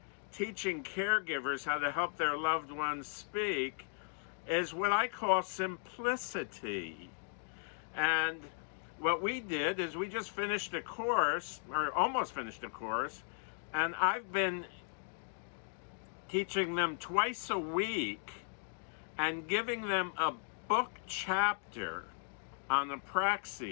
teaching caregivers how to help their loved ones speak, is what I call simplicity. And what we did is we just finished a course, or almost finished a course, and I've been teaching them twice a week and giving them a book chapter on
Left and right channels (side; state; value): right; silent; 53 dB below the other